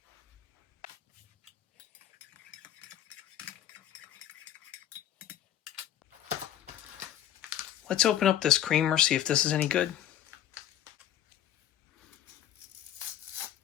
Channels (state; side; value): quieter; right; 11.3 dB